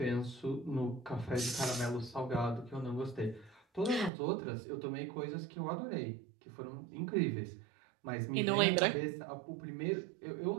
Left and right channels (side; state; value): left; drops out; at 4.1 s